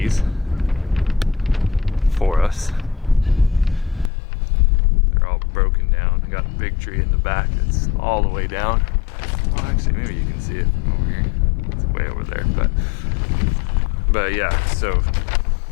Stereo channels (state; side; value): drops out; right; at 4.1 s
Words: for us. They're all broken down. I got a big tree in the back that's all the way down. Well, actually, maybe you can see it over here. It's way over there, but yeah. So